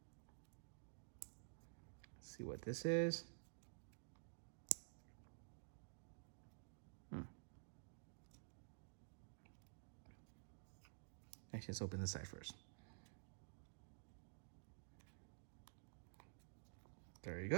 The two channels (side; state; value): left; silent; digital silence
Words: Let's see what this is. Actually, let's open this side first. There you